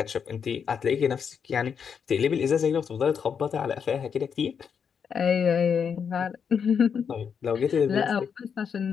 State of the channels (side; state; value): right; quieter; 6.9 dB